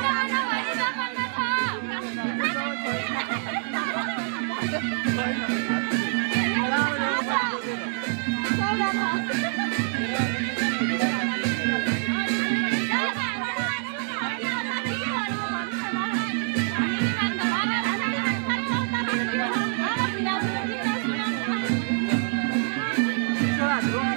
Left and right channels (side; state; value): left; silent; 61 dB below the other